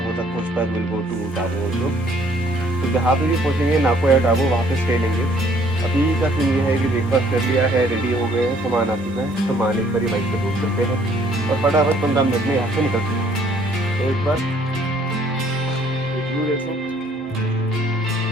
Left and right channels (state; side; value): normal; both; correlation 0.62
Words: तक पहुँच पाए will go to Tabo also. तो जहाँ पे भी पहुँचेंगे नाको या टाबो वहाँ पे स्टे लेंगे। अभी का सीन ये है कि ब्रेकफास्ट कर लिया है, रेडी हो गए हैं, सामान आ चुका है, सामान एक बार बाइक पे रोक करते हैं और फटाफट 15 मिनट में यहाँ से निकलते हैं। तो एक बार देखो